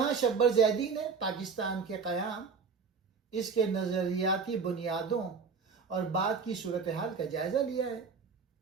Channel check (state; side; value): quieter; left; 5.3 dB